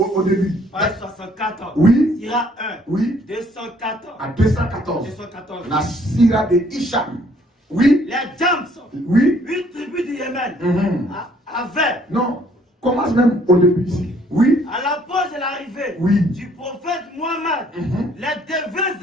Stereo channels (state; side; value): normal; both; correlation 0.62